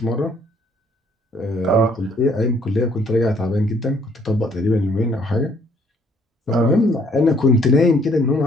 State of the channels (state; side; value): normal; both; correlation 0.63